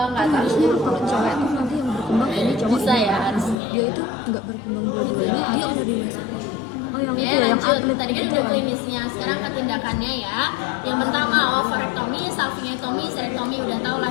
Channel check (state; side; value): drops out; right; at 3.6 s